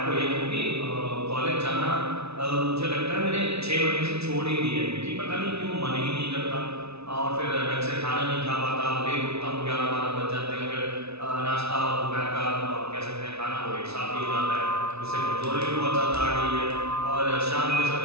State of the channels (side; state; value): left; late; 0.79 ms